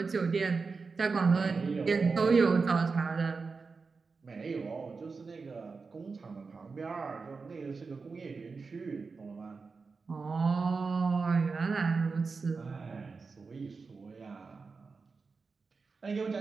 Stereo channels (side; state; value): left; quieter; 4.6 dB